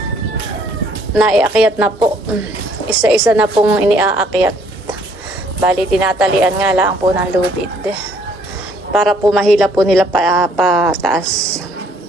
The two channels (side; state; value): both; normal; correlation 0.63